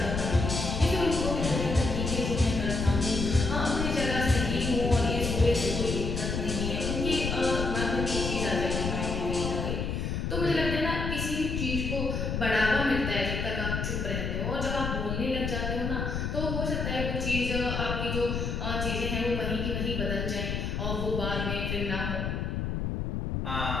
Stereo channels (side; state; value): left; noise; rumble, 2 dB below the sound